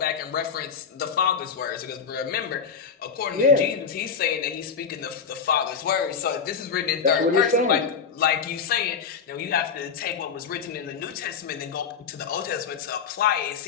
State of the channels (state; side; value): quieter; right; 6.3 dB